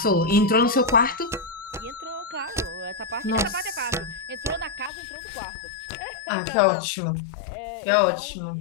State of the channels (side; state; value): right; drops out; at 4.9 s